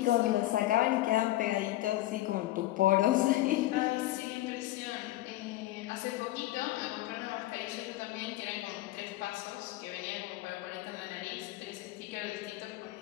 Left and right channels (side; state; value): right; quieter; 16.3 dB